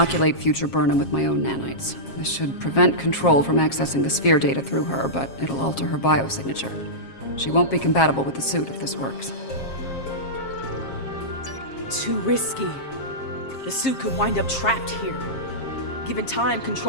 future Burnham with my own nanites. This should prevent Control from accessing the sphere data through her, but it'll alter her biosignature. She won't be compatible with the suit if this works. Too risky. The suit could wind up trapped here. Given time,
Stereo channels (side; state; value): right; late; 7.4 ms